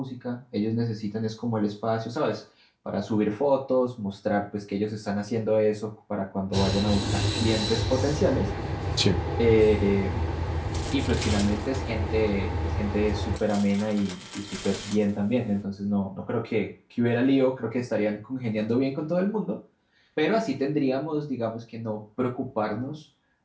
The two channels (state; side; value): identical; both; correlation 1.00